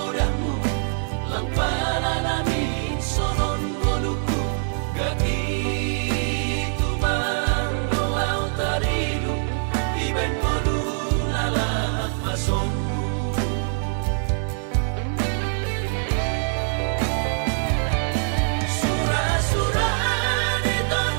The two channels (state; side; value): silent; left; 63 dB below the other